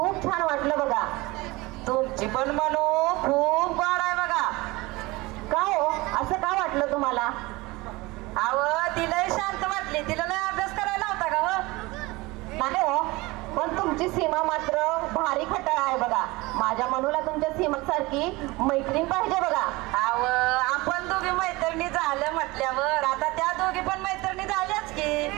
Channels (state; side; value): quieter; left; 22.1 dB